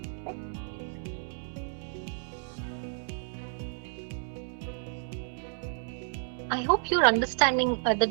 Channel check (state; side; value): silent; left; 57 dB below the other